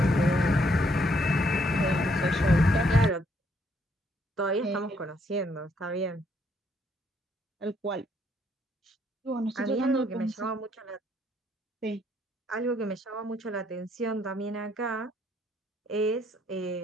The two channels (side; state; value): both; normal; correlation 0.70